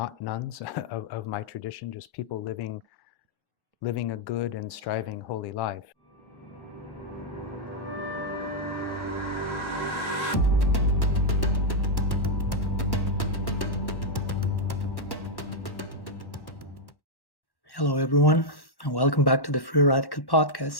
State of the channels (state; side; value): late; right; 1.1 ms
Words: nuns of my tradition, just people living a good and striving holy life. Hello, everyone, and welcome back to the Free Radical